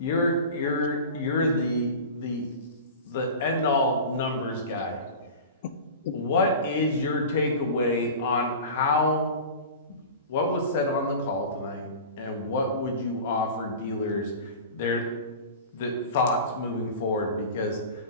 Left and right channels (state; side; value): inverted; both; correlation -0.34